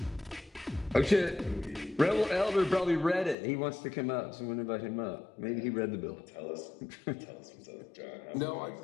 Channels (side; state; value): right; drops out; at 3.4 s